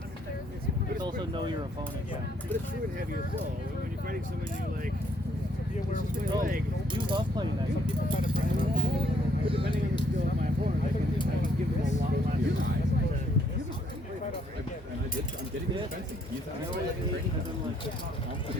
this. But also know your opponent. Yeah, but it's true and heavy as well. When you're fighting someone, you're like, you love playing that. Some people find it pretty well. But depending on the skill of my opponent, I can give them a lot less time. I'm getting defensive. You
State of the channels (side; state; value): both; normal; correlation 0.68